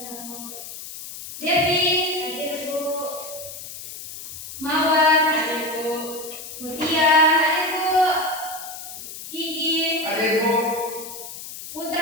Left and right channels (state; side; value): noise; left; hiss, 11 dB below the sound